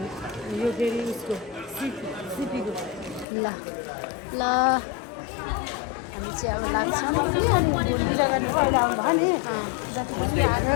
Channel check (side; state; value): right; drops out; at 3.2 s